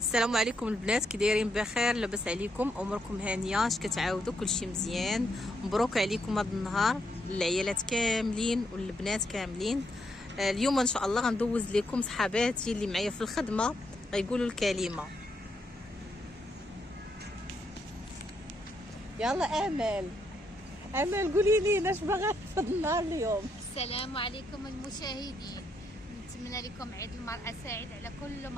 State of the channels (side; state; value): both; normal; correlation 0.77